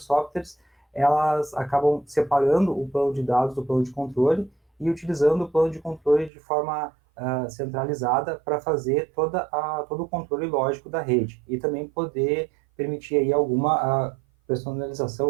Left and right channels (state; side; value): drops out; left; at 6.3 s